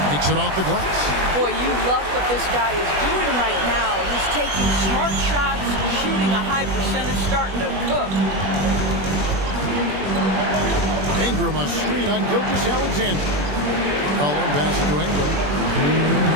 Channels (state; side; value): late; left; 21 ms